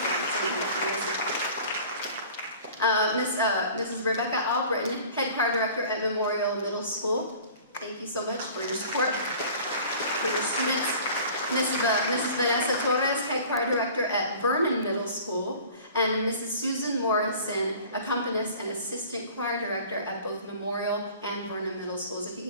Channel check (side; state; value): both; inverted; correlation -0.45